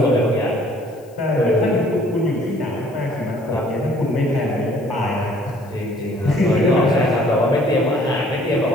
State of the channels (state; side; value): noise; left; hiss, 29 dB below the sound